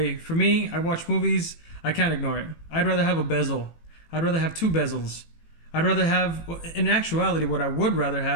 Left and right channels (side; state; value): right; late; 18 ms